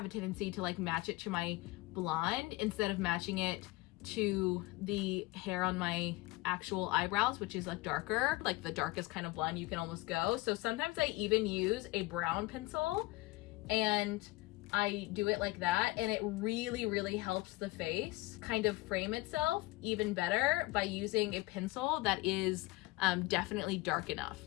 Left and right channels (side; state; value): right; quieter; 21.0 dB